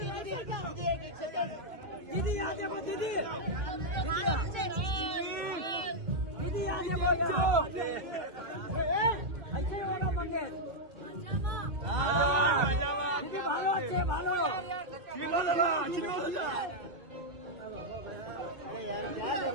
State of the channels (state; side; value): late; left; 2.7 ms